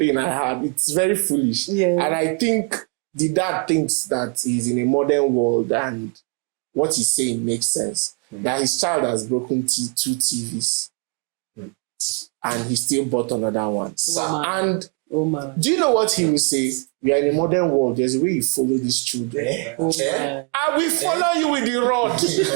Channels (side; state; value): left; quieter; 36.1 dB